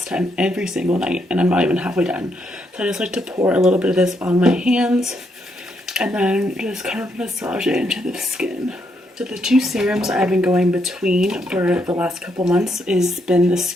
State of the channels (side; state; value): both; normal; correlation 0.77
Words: time. Every single night. And I'm not even halfway done. So I just like to pour a little bit of this on my hands. And then just kind of massage it into the skin. So the two serums I've been going between for the last couple months has been the